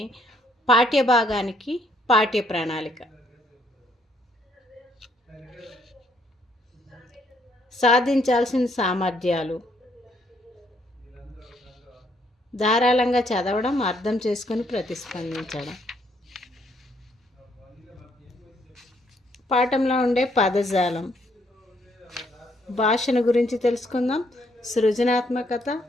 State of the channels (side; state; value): both; normal; correlation 0.70